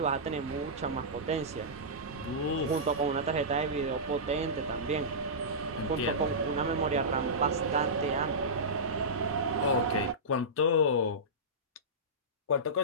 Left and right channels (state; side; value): normal; both; correlation -0.17